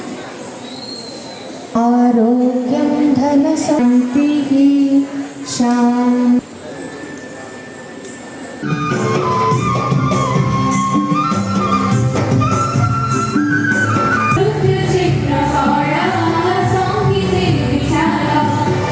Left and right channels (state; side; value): identical; both; correlation 1.00